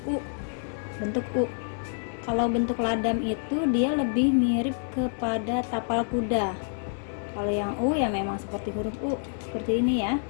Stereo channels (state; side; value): silent; right; 58 dB below the other